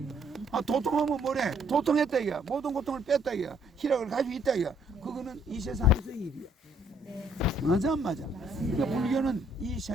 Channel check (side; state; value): both; normal; correlation 0.66